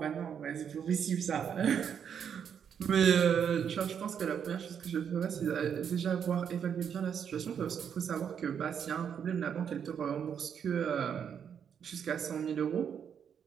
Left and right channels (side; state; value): left; quieter; 7.9 dB